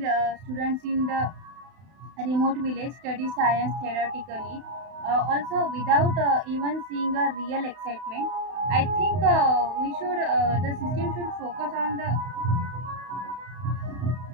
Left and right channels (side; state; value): left; late; 31 ms